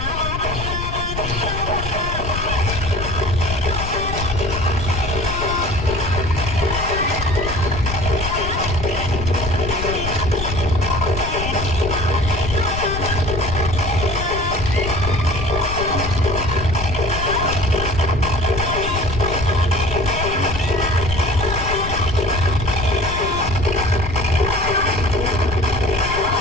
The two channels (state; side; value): noise; left; rumble, 6 dB below the sound